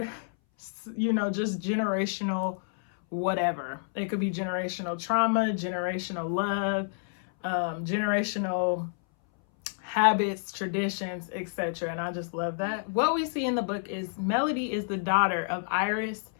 just generational whatever. It could be generational trauma, generational love, generational habits, traditions, etc. And I just love that. What we see in the book is Melody is the daughter of Iris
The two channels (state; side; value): silent; right; 59 dB below the other